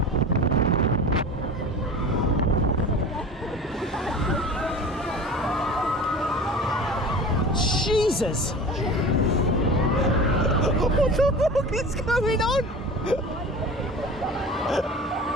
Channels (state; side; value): normal; both; correlation 0.37